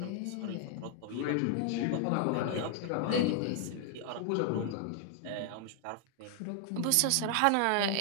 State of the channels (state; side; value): different; both; correlation 0.00